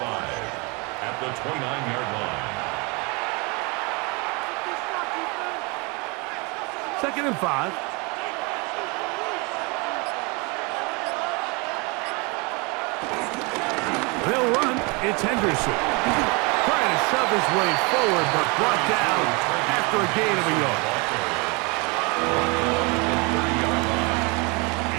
5 at the 29-yard line. 2nd and 5. They'll run. It's Henderson. Trying to shove his way forward, but brought down after a gain of a yard.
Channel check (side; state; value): left; quieter; 29.4 dB